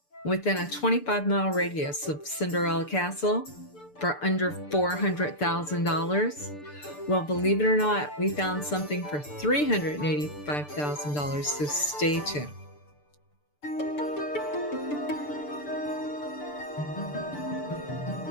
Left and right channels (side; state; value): right; late; 6.8 ms